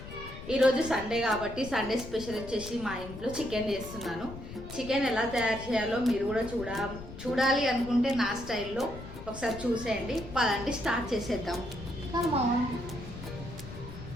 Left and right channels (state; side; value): noise; left; rumble, 12 dB below the sound